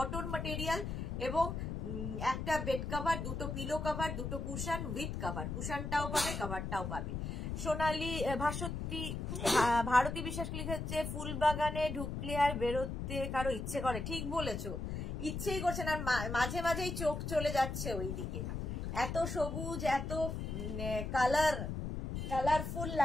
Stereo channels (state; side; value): noise; left; rumble, 4 dB below the sound